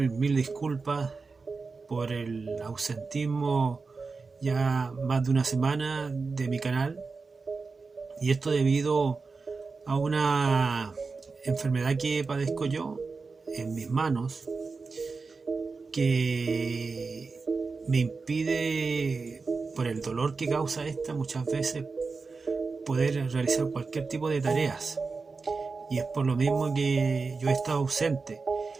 disculpas por el ausentismo ya más de una semana de mi canal, y esto debido a una enfermedad que padezco yo en mis manos, que me impide, por el dolor que causa esta, muchas veces poder realizar cualquier tipo de tareas, y es por lo mismo que yo he estado ausente.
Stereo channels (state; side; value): quieter; left; 4.4 dB